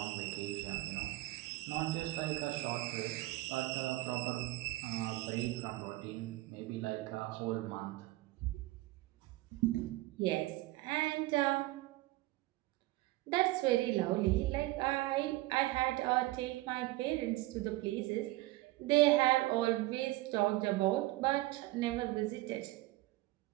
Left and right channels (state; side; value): quieter; left; 19.1 dB